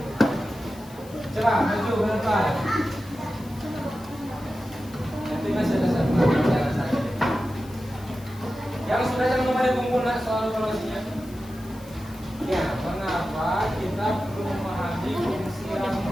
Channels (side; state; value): left; noise; hiss, 22 dB below the sound